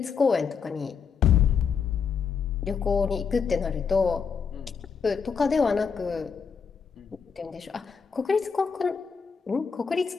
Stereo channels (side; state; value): right; quieter; 6.1 dB